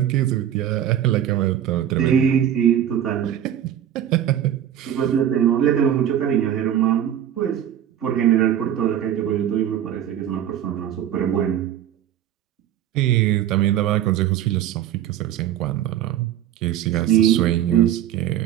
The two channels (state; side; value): quieter; left; 10.6 dB